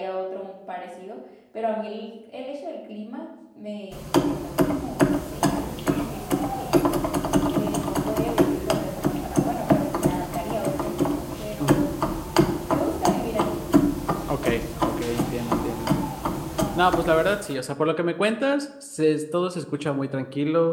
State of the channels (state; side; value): identical; both; correlation 1.00